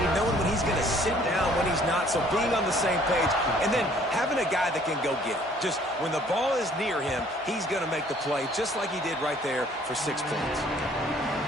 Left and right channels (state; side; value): normal; both; correlation 0.58